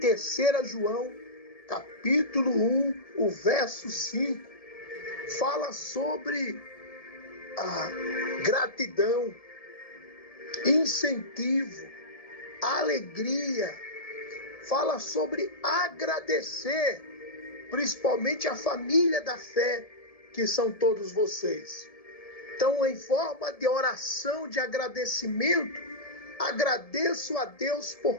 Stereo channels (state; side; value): late; right; 1.7 ms